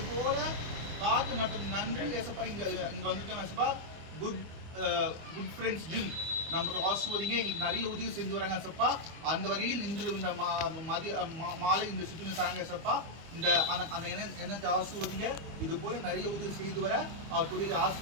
போல காத்து நடத்தும் நன்றி ஏசப்பா. இங்க வந்துட்டோம் ஏசப்பா. குட் ஃப்ரெண்ட்ஸ் ஜிம் நம்ம ஆசிர்வதிங்க. எங்களுக்கு நிறைய உதவி செஞ்சு வராங்க ஏசப்பா. அந்த வகையில் இன்று இந்த மாலை இந்த சுற்றுலா தராங்க ஏசப்பா. இந்த அந்த எண்ணத்தை ஆசிர்வதிங்க. இது போல நிறைய உதவி செய்து வர அவர் தொழிலை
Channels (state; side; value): late; left; 25 ms